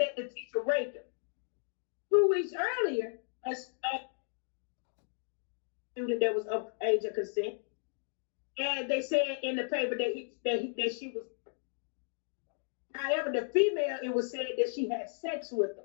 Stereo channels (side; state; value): right; silent; digital silence